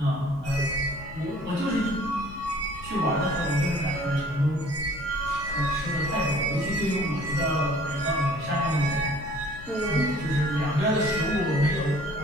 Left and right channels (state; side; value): noise; left; rumble, 16 dB below the sound